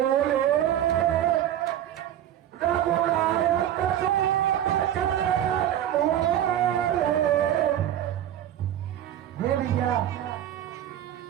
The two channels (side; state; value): left; quieter; 11.3 dB